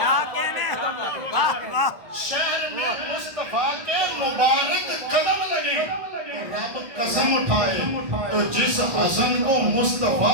شہر میں مصطفیٰ کے مبارک قدم لگے رب قسم اٹھائے تو جس حسن کو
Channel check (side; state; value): left; late; 1.6 ms